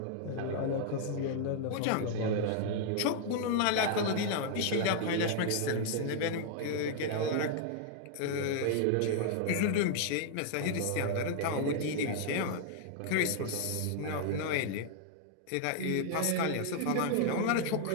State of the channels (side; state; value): both; different; correlation 0.00